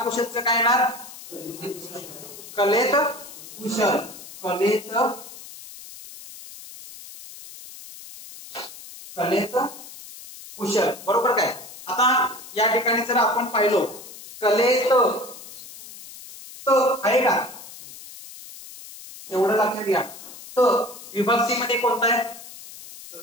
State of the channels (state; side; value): noise; left; hiss, 16 dB below the sound